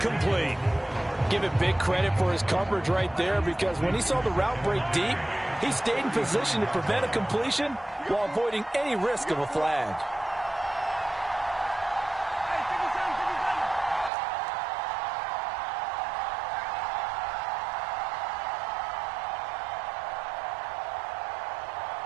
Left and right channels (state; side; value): drops out; left; at 14.1 s